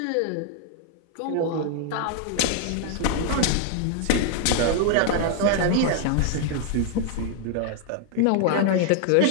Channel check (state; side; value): different; both; correlation 0.00